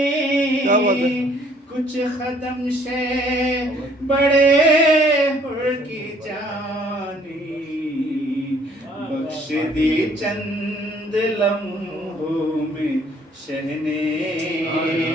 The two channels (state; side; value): normal; both; correlation 0.61